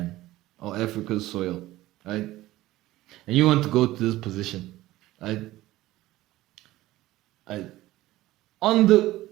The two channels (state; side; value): quieter; left; 16.7 dB